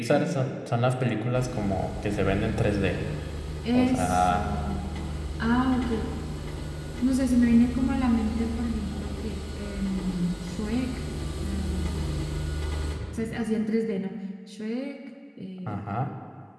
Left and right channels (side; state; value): both; identical; correlation 1.00